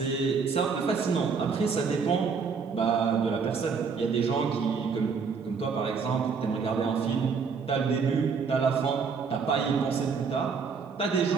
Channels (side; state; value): left; quieter; 5.5 dB